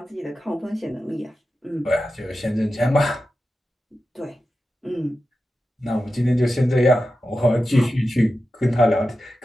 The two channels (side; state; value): both; normal; correlation 0.92